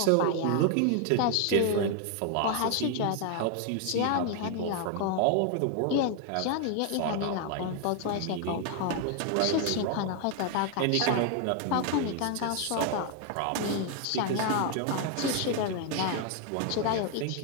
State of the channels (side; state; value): both; different; correlation 0.00